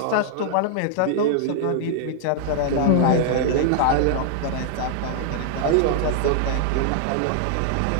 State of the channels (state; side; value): different; both; correlation -0.01